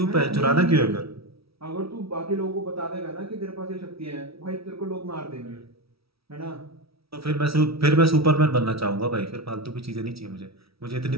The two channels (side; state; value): left; late; 0.76 ms